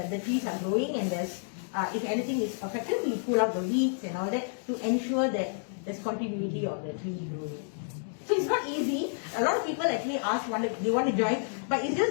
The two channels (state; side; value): silent; right; digital silence